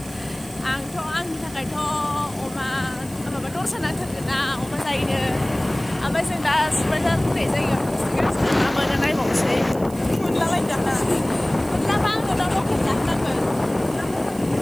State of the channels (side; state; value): right; noise; hiss, 19 dB below the sound